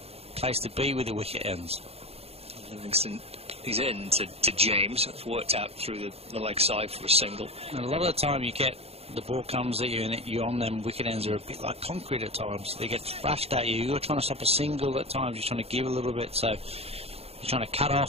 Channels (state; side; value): late; left; 0.29 ms